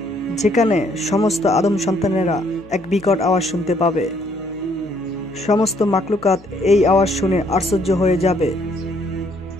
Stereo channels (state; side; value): noise; left; hum, 25 dB below the sound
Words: যেখানে সমস্ত আদম সন্তানেরা এক বিকট আওয়াজ শুনতে পাবে। সমস্ত মাকলুকাত এই আওয়াজ শুনে আশ্চর্য হয়ে যাবে